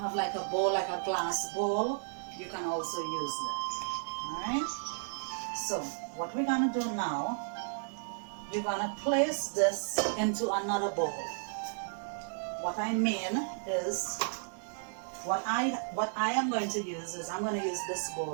a bowl, like a glass bowl, you can also use that. Alright? So what we're gonna do now, you're gonna place this into another bowl. What I mean is, what I am going to use is, I'm going to use this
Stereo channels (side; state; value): left; silent; digital silence